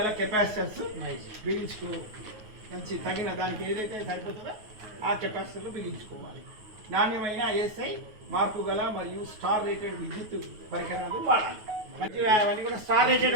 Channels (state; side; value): late; left; 9.4 ms